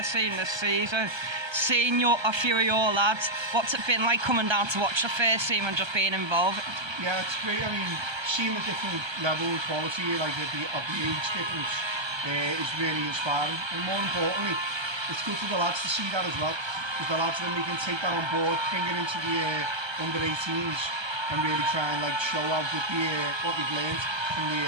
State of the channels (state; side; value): late; left; 1.3 ms